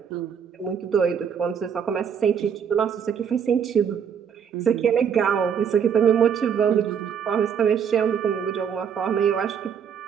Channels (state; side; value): quieter; left; 7.5 dB